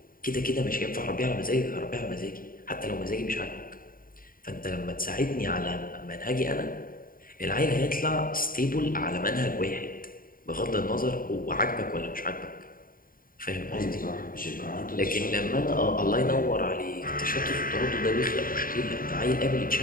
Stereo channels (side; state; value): right; late; 0.41 ms